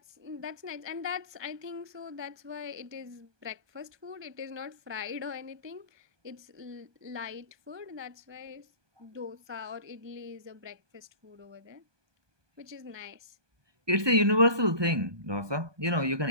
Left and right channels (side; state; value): left; late; 1.2 ms